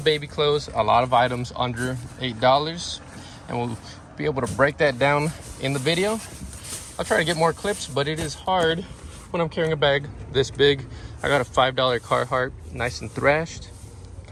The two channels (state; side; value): identical; both; correlation 1.00